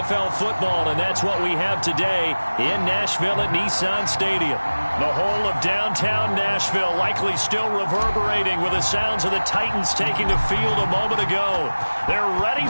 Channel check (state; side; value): inverted; both; correlation -1.00